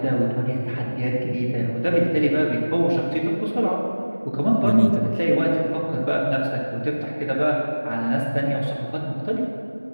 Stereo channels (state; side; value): inverted; both; correlation -1.00